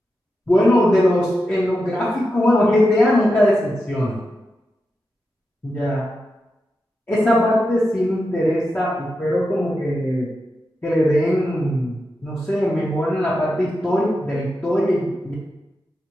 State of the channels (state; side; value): normal; both; correlation 0.88